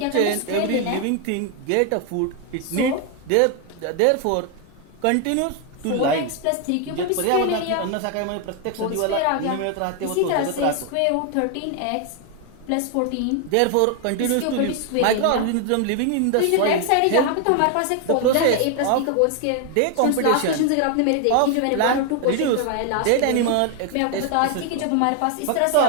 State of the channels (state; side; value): different; both; correlation 0.01